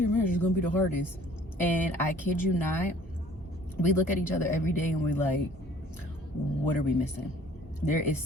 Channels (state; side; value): normal; both; correlation 0.53